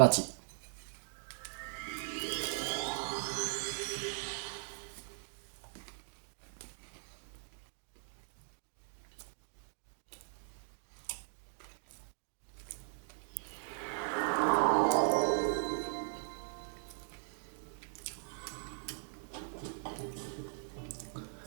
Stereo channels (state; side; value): silent; left; digital silence